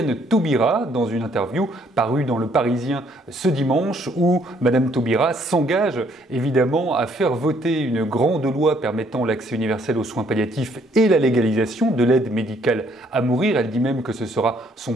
Taubira dans une interview parue dans Le Parisien ce dimanche où Madame Taubira s'engage évidemment à faire voter une grande loi permettant l'accès universel aux soins palliatifs et la légalisation de l'aide médicale à mourir. Elle dit même que ce sera son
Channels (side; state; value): both; normal; correlation 0.66